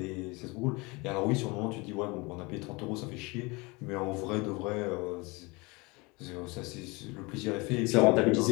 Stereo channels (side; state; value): right; quieter; 25.9 dB